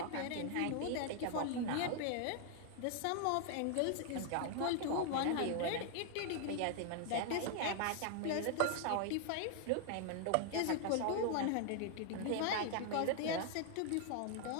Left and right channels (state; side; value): different; both; correlation 0.00